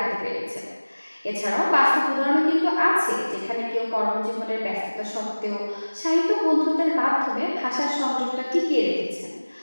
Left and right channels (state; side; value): inverted; both; correlation -1.00